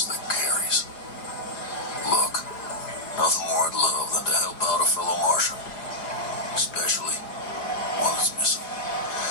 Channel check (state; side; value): late; right; 4.9 ms